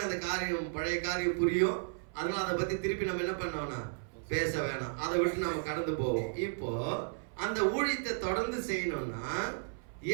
அந்த காரியம், பழைய காரியம் புரியும். அதனால அதை பத்தி திருப்பி நம்ம என்ன பண்ணோம்னா பேச வேணாம், அதை விட்டு நம்ம கடந்து போவோம். இப்போ அந்த ஊழியத்தை தொடர்ந்து செய்யணும்னா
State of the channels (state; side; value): silent; left; 55 dB below the other